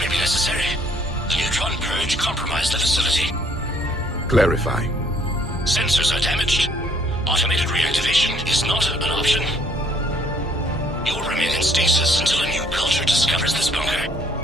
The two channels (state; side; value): normal; both; correlation 0.63